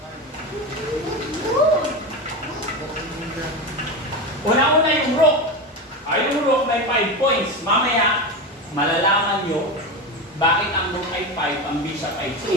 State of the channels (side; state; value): both; normal; correlation 0.20